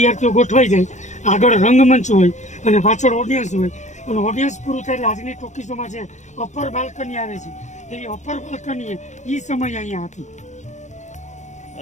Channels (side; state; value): right; late; 0.34 ms